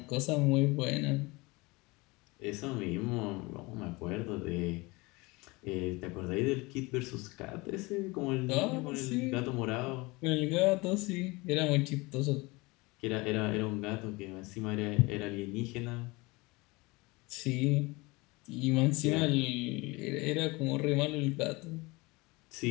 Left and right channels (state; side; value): quieter; right; 24.1 dB